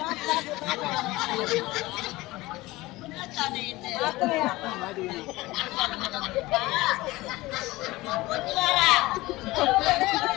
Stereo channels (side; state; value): right; quieter; 19.6 dB